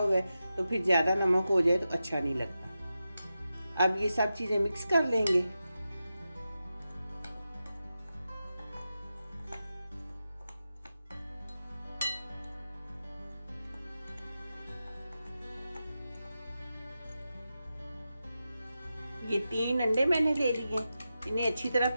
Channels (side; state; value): both; inverted; correlation -0.91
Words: है तो फिर ज़्यादा नमक हो जाए तो अच्छा नहीं लगता। अब ये सब चीज़ें मिक्स कर लेंगे। ये 3 अंडे मैंने ले लिए, इन्हें अच्छी तरह